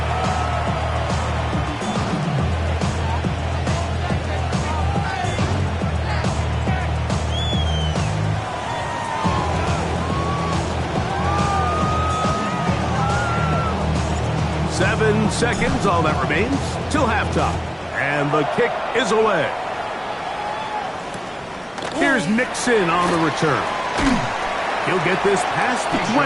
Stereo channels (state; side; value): identical; both; correlation 1.00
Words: Seven seconds, all that remains, till halftime. And the kick is away. Here's Nixon on the return. He'll get this past the